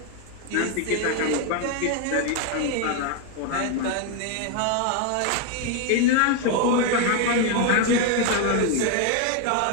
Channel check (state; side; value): different; both; correlation 0.01